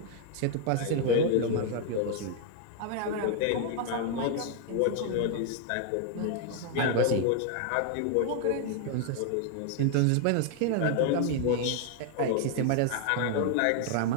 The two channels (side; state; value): both; different; correlation 0.00